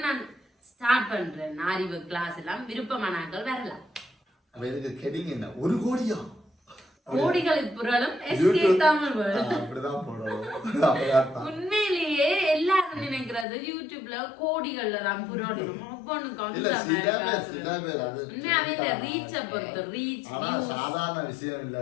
நான் ஸ்டார்ட் பண்றேன் அறிவு கிளாஸ் எல்லாம். விருப்பமானாக்கள் வரலாம். ஒரு கோடியா கோடிகளுக்கு புரளும் உண்மையிலேயே எல்லாரும் நினைக்கிறது யூடியூப்ல கோடிகள்ல தான் புரளணும். உண்மையாவே இந்த ரீச்ச பொறுத்து ரீச் சாதாரண விஷயம் இல்ல.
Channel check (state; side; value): drops out; right; at 13.5 s